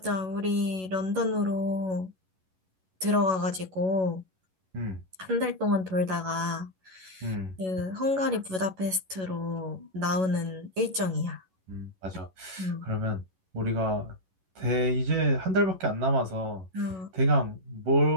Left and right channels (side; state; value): left; late; 11 ms